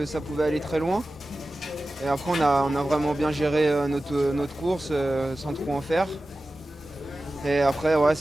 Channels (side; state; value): both; normal; correlation 0.95